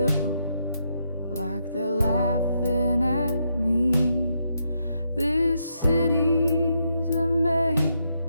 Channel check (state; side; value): inverted; both; correlation -0.80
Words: like they're laughing at me. This city's a